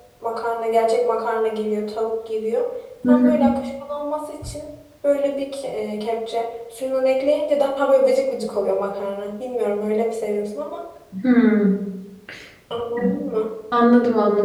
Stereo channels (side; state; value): both; identical; correlation 1.00